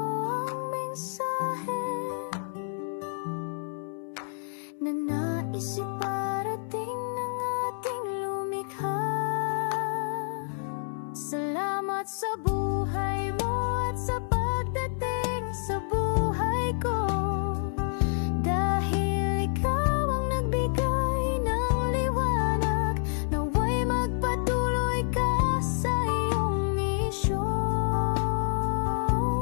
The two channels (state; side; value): silent; right; 59 dB below the other